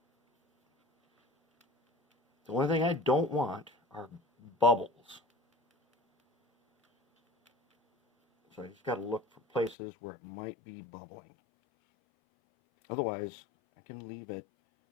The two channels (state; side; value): drops out; right; at 9.8 s